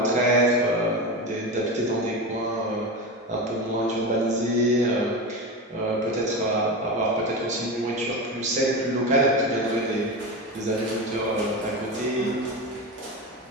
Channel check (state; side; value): normal; both; correlation 0.21